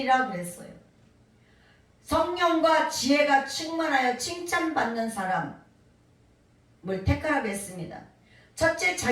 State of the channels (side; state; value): both; identical; correlation 1.00